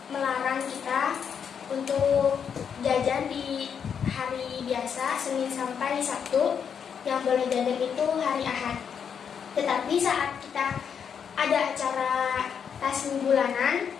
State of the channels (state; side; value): quieter; right; 7.3 dB